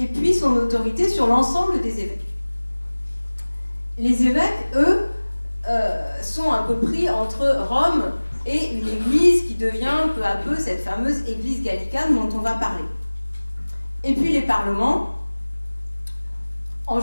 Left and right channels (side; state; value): both; inverted; correlation -1.00